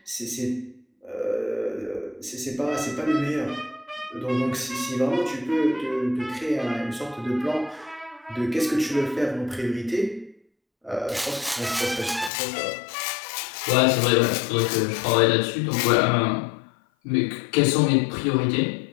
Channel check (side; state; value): right; drops out; at 12.3 s